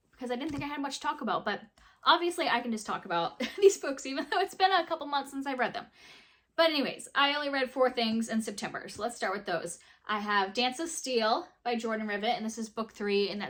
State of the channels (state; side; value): identical; both; correlation 1.00